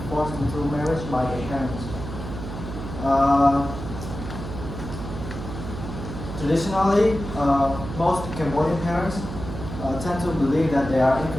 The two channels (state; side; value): noise; right; hum, 8 dB below the sound